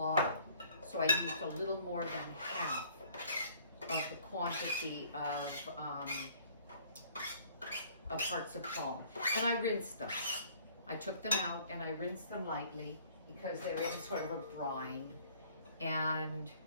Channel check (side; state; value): both; inverted; correlation -0.57